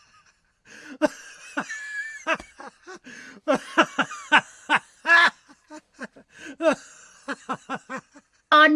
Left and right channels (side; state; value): both; identical; correlation 1.00